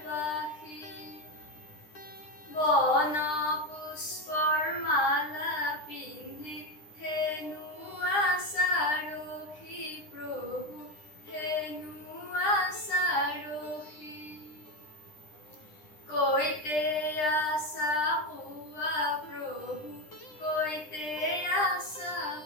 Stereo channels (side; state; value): right; late; 9.9 ms